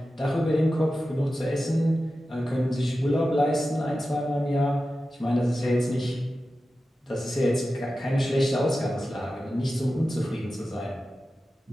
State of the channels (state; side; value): normal; both; correlation 0.93